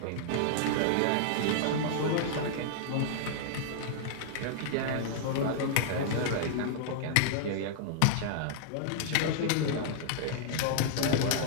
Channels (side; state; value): both; different; correlation -0.01